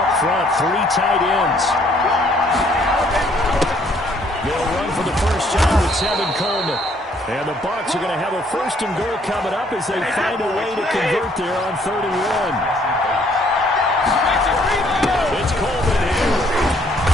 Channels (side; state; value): both; normal; correlation 0.64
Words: front. 3 tight ends. They'll run for the first time with Tevin Coleman. And the Bucs are going to have a first and goal coming up as they find a way to convert there on 3rd and 1. It's Coleman here.